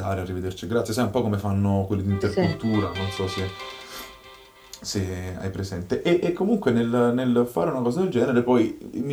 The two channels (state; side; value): identical; both; correlation 1.00